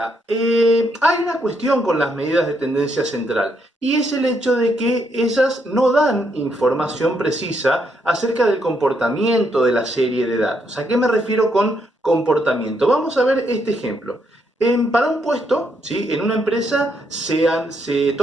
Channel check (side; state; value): both; normal; correlation 0.76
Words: hay una cuestión con las medidas de tendencia central y es el hecho de que ellas no dan información precisa acerca del comportamiento de la serie de datos. ¿A qué me refiero con comportamiento? Vamos a ver este ejemplo. Para un puesto, ¿sí? En una empresa se